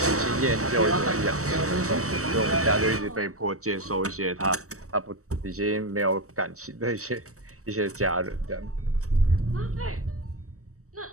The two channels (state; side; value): late; left; 0.65 ms